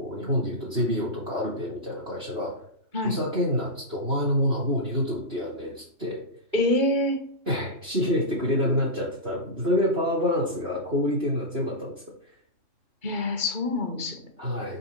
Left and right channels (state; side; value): late; left; 2.9 ms